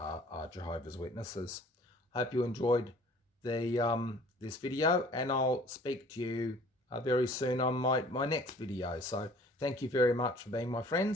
Jehovah's Witnesses. Hope you enjoyed this video, and I'll speak to you very soon on my next video. So thank you very much for being my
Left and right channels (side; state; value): both; normal; correlation 0.52